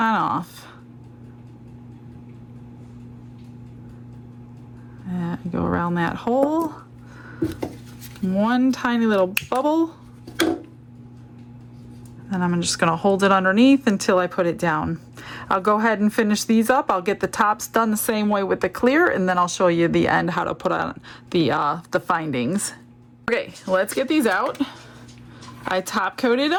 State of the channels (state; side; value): identical; both; correlation 1.00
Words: off. And go around that hole. One tiny little bubble. And I'm just gonna hold it underneath until I put it down. I'll go ahead and finish these up. I'll get the tops done the same way with the clear, and then I'll show you the end how to put on the findings. Okay, let's get these out. I top coated